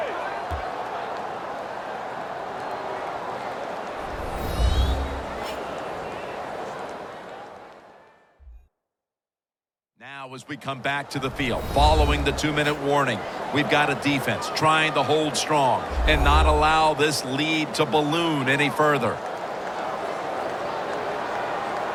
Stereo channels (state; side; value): identical; both; correlation 1.00